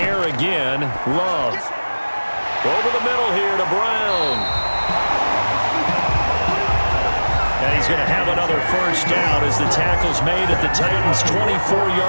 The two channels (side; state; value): both; inverted; correlation -1.00